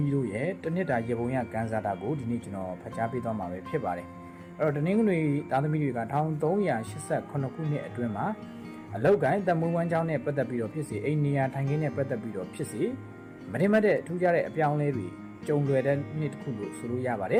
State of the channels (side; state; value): both; identical; correlation 1.00